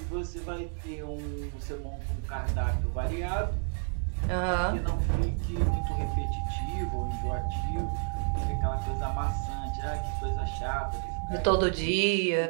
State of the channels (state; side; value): silent; left; 58 dB below the other